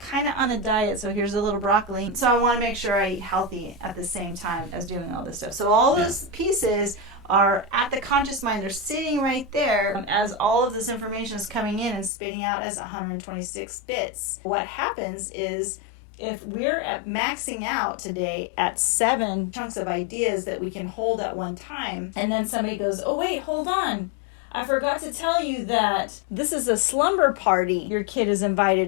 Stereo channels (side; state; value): right; drops out; at 12.1 s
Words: of on a diet, so here's a little broccoli. So I want to make sure I eat healthy at the same time as doing all this stuff. So all those pieces are at the conscious mind. They're sitting right there as all of this information is coming in and spitting out as 126 bits. What happens is, if we're at maxing out today at 7 chunks of ideas that we can hold at one time, and then somebody goes, oh wait, hold on, I forgot to tell you that this is a slumber party your kid is